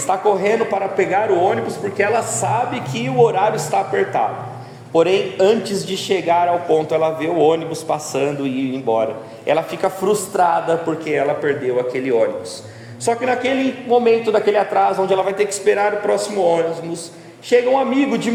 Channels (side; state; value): both; identical; correlation 1.00